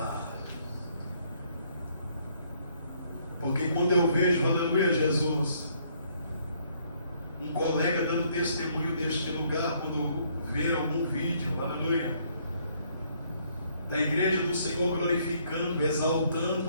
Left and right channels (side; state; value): both; inverted; correlation -0.67